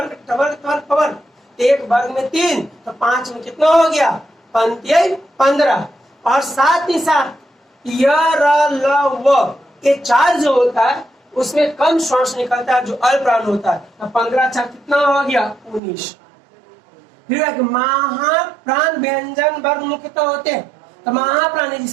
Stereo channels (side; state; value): left; drops out; at 15.8 s